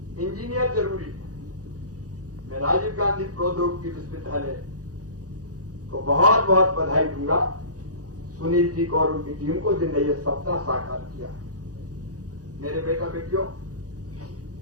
इंजीनियर जरूरी है। मैं राजीव गांधी प्रौद्योगिकी विश्वविद्यालय को बहुत बहुत बधाई दूंगा, सुनील जी को और उनकी टीम को, जिनने ये सपना साकार किया। मेरे बेटा बेटियों,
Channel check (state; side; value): late; left; 0.67 ms